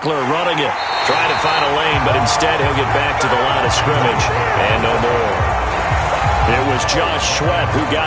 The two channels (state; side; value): identical; both; correlation 1.00